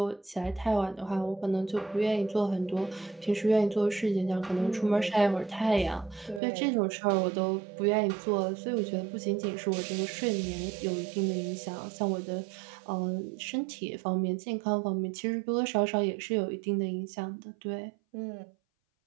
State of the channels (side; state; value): left; drops out; at 6.4 s